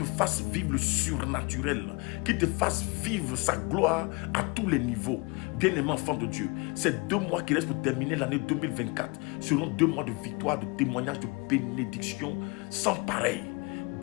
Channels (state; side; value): quieter; right; 28.2 dB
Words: fasse vivre le surnaturel, qu'il te fasse vivre sa gloire à tous les niveaux. Bien-aimé enfant de Dieu, ces 2 mois qui restent pour terminer l'année 2024 seront 2 mois de victoire, de témoignage, de bénédiction sans pareil.